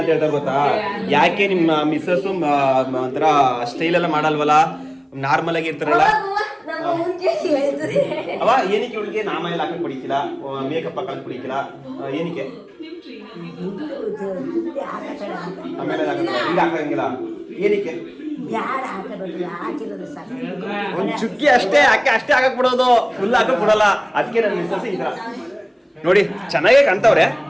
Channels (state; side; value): identical; both; correlation 1.00